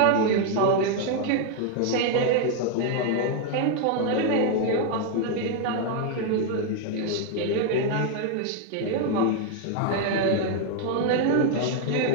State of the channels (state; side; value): different; both; correlation 0.00